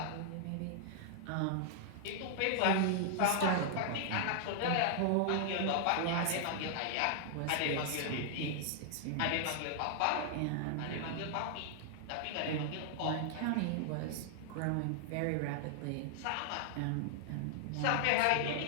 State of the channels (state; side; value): different; both; correlation -0.01